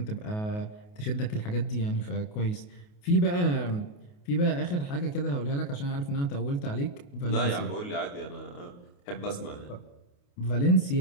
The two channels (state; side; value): late; right; 28 ms